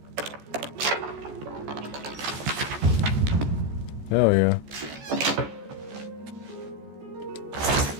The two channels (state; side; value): late; left; 14 ms